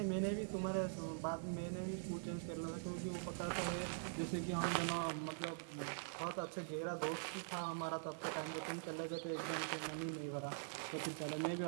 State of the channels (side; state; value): left; silent; digital silence